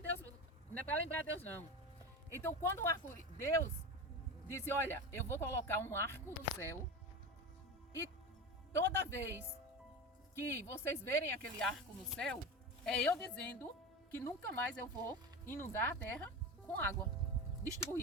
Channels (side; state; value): both; normal; correlation 0.25